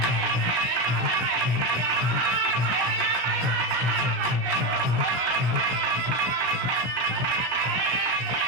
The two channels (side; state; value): left; late; 17 ms